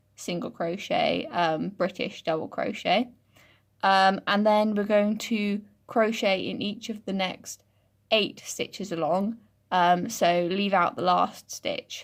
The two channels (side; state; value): both; identical; correlation 1.00